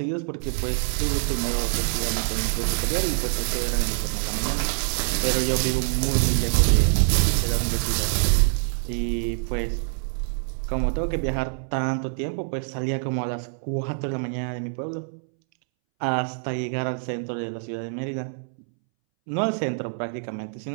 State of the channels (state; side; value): silent; left; 62 dB below the other